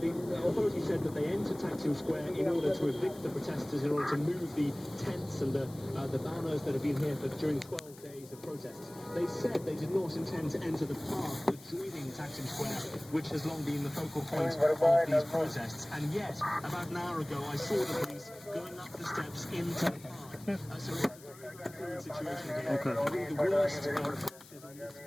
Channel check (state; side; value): noise; left; hiss, 21 dB below the sound